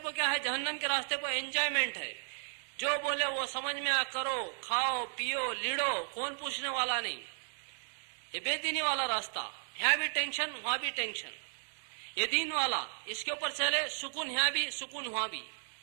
کیا ہے, جہنم کے راستے پہ انجوائمنٹ ہے. جو بولے وہ سمجھ میں کرو, کھاؤ پیو لیڑو, کون پوچھنے والا نہیں. یہ بے دینی والا راستہ, یہاں بھی ٹینشن وہاں بھی ٹینشن. یہ دین والا, اس کے اوپر چلے, سکون یہاں بھی سکون وہاں بھی.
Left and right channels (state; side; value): silent; left; digital silence